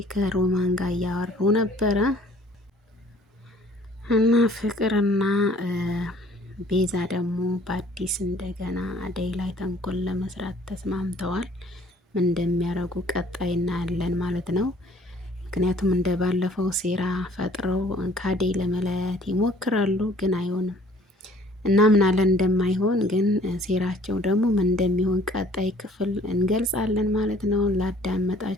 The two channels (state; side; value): normal; both; correlation 0.56